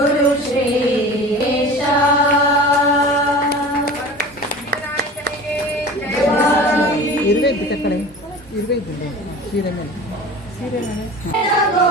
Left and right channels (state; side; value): normal; both; correlation 0.37